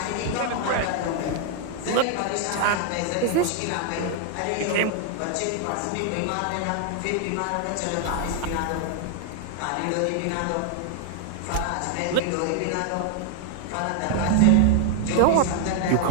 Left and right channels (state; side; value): different; both; correlation 0.00